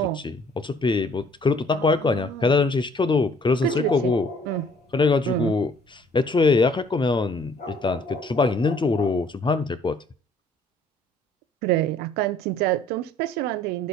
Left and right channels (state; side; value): normal; both; correlation 0.58